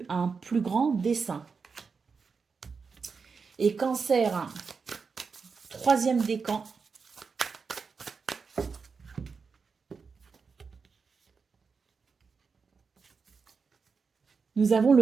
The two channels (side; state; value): left; quieter; 5.2 dB